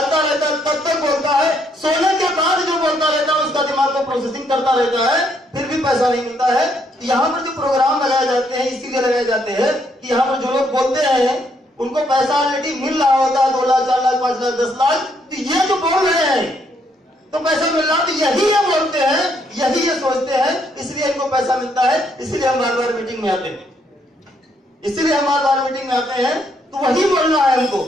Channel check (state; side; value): normal; both; correlation 0.72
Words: रहता है तब तक बोलता है, सोने के बाद जो बोलता रहता है उसका दिमाग को प्रोसेसिंग करता रहता है, फिर भी पैसा नहीं मिलता है। यहाँ पर जो प्रोग्राम लगाए जाते हैं इसीलिए लगाए जाते हैं कि यहाँ पर जो लोग बोलते हैं उनको पैसा ऑलरेडी मिल रहा होता है, 2 लाख, 4 लाख, 5 लाख, 10 लाख। तो ये जो बोल रहे हैं तो पैसा मिल रहा, तो यही ये बोलते हैं, यही ये सोचते हैं, इसलिए इनको पैसा मिलता है। इसलिए हम बार बार मीटिंग में आते हैं, इसलिए हम बार बार मीटिंग में आते हैं। तो वही बोलना है हमको।